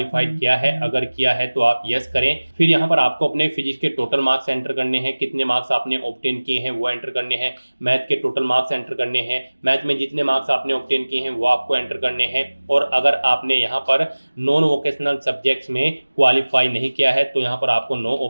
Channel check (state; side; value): inverted; both; correlation -1.00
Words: किया है। अगर किया है तो आप यस करें। फिर यहाँ पर आपको अपने फिजिक्स के टोटल मार्क्स एंटर करने हैं, कितने मार्क्स आपने ऑब्टेन किए हैं वो एंटर करने हैं। मैथ के टोटल मार्क्स एंटर करने हैं, मैथ में जितने मार्क्स आपने ऑब्टेन किए हैं वो आपको एंटर करने हैं। और अगर आपने यहाँ पर नॉन वोकेशनल सब्जेक्ट्स में क्वालिफाई नहीं किया है तो यहाँ पर आपको नो